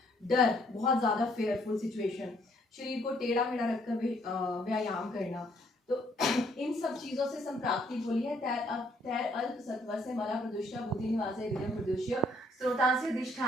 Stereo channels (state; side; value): normal; both; correlation 0.66